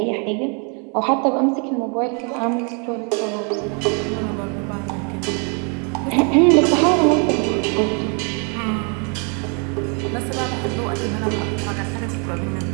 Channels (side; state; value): left; quieter; 36.7 dB